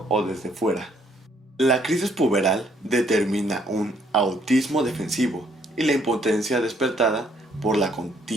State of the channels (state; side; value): normal; both; correlation 0.67